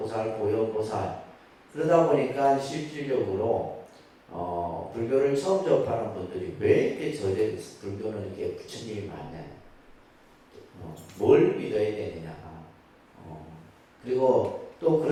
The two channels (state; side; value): identical; both; correlation 1.00